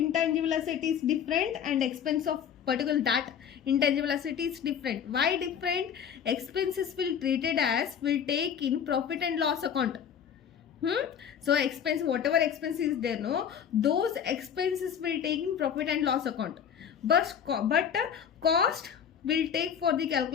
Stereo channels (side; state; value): right; quieter; 8.2 dB